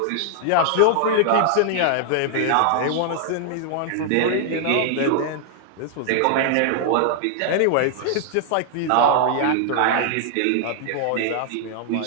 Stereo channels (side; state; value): both; different; correlation 0.00